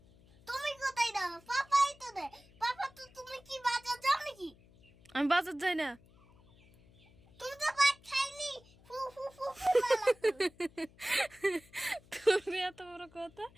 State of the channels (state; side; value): noise; left; hum, 26 dB below the sound